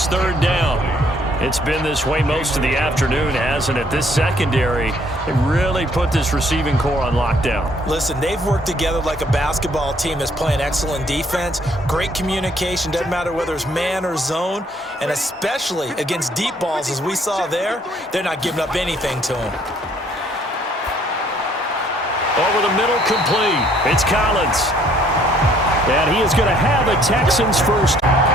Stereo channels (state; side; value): normal; both; correlation 0.64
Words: 3rd down. It's been this way most of the afternoon, hasn't it? This secondary really put this receiving core on lockdown. Listen, they've worked together like a basketball team that's playing excellent defense. Great communication, doesn't matter whether it's man or zone, and especially against deep balls, as we saw there, they're not giving up anything to them. Over the middle, complete. It's Collins. And he is going to have a Texans first.